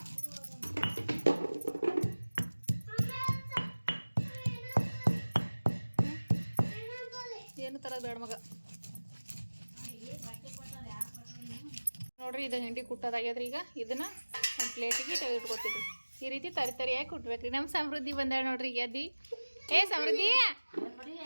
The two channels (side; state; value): both; inverted; correlation -1.00